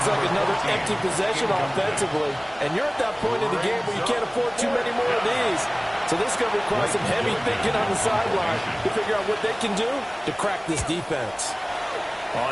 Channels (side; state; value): both; identical; correlation 1.00